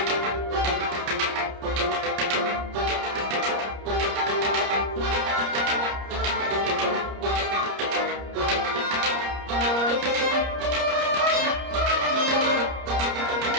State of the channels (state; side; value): late; left; 30 ms